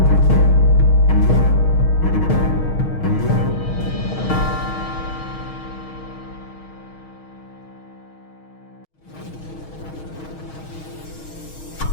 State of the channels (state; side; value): late; right; 6.4 ms